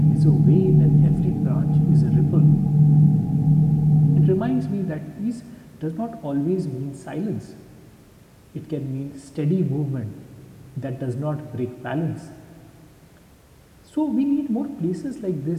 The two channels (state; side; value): identical; both; correlation 1.00